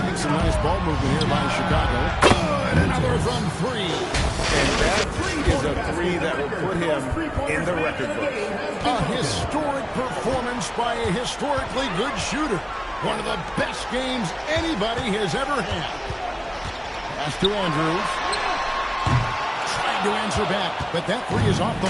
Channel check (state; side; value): identical; both; correlation 1.00